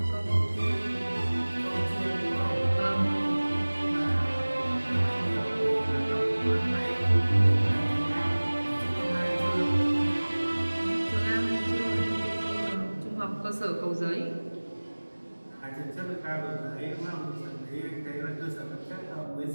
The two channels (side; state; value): both; inverted; correlation -1.00